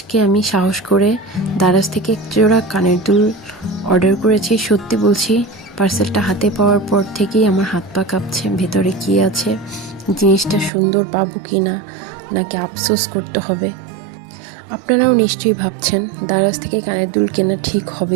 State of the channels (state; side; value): drops out; left; at 10.7 s